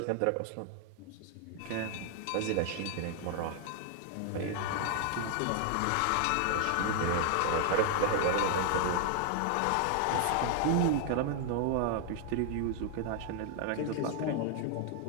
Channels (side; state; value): both; different; correlation 0.00